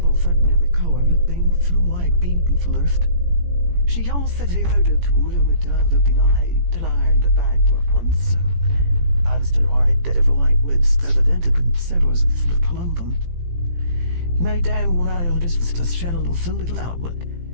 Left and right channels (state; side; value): late; left; 17 ms